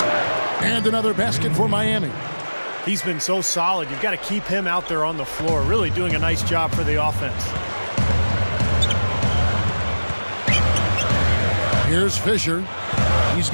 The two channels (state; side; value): inverted; both; correlation -1.00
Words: And another basket for Miami. He's been so solid. You've got to keep him out there on the floor, really doing a nice job for the offense. Here's Fisher. He's